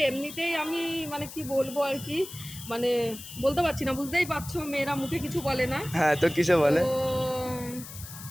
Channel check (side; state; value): left; noise; hiss, 13 dB below the sound